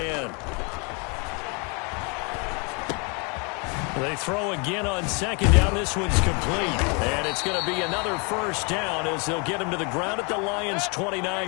They throw again on 2nd down. This one's complete. And it's going to be another 1st down as they'll get him to the ground at the Lions'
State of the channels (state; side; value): quieter; right; 32.8 dB